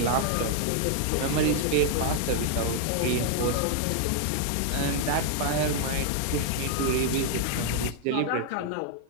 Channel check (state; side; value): different; both; correlation 0.00